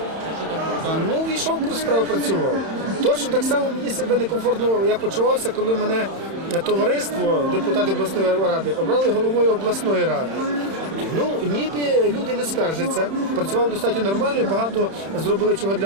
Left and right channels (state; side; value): late; left; 31 ms